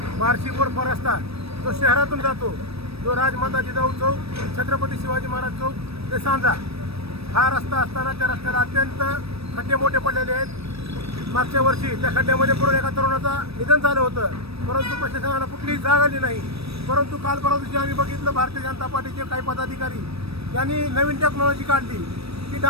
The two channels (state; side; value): late; left; 0.78 ms